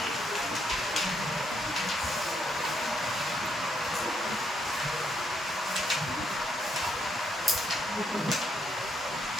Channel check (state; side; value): normal; both; correlation 0.75